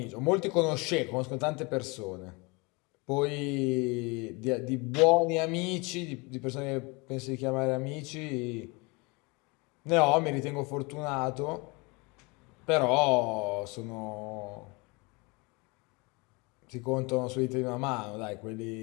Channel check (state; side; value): quieter; right; 27.7 dB